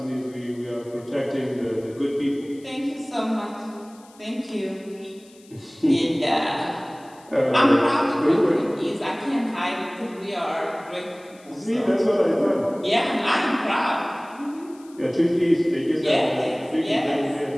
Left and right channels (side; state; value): left; noise; hiss, 27 dB below the sound